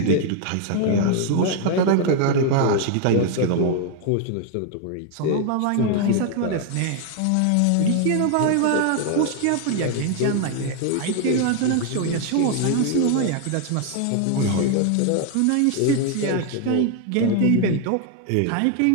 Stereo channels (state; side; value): different; both; correlation 0.00